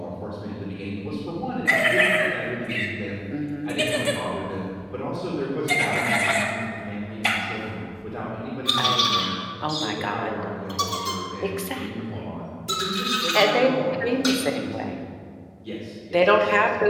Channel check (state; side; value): identical; both; correlation 1.00